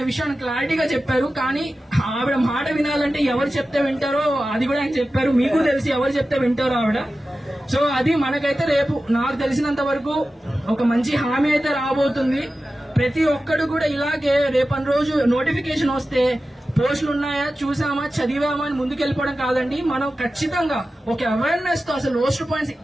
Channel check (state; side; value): normal; both; correlation 0.94